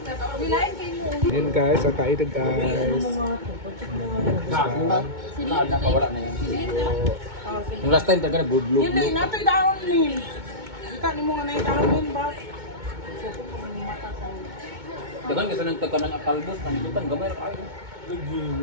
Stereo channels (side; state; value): left; late; 2.2 ms